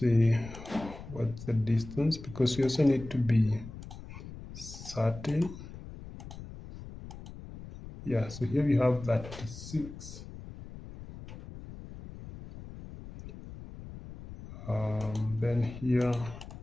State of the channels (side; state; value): left; noise; rumble, 13 dB below the sound